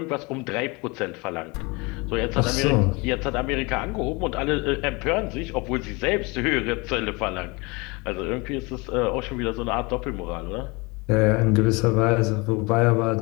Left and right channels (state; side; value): quieter; right; 26.8 dB